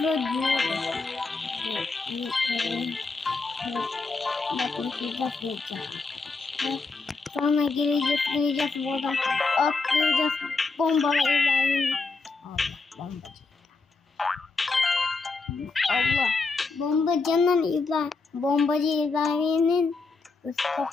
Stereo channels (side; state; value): right; quieter; 4.0 dB